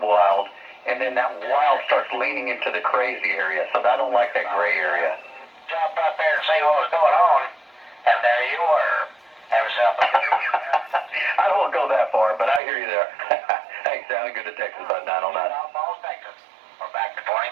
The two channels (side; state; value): left; drops out; at 12.6 s